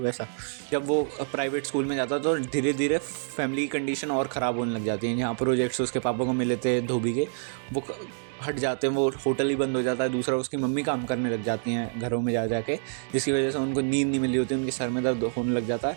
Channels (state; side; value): silent; left; digital silence